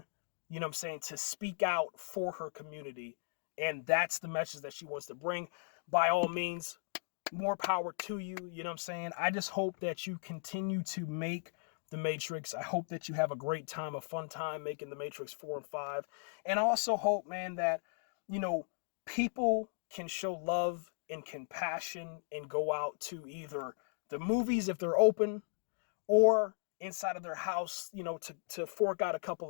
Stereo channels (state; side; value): silent; right; digital silence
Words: you know what I'm saying, to speak out for her community. And that's the message that she wants to bring. By all means, more power to you. You know what I'm saying? I just hope that you continue to make The Matrix. I hope that you have a great time, a fun time making The Matrix 4 and 5. And I also hope, man, that, you know, people can show love and compassion and go out to either the movies if they're open, or inside of their house, you know, to fork out a couple